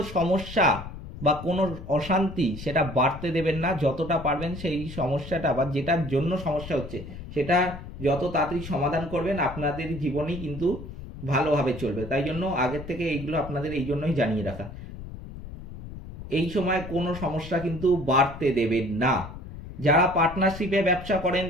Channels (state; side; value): noise; left; rumble, 12 dB below the sound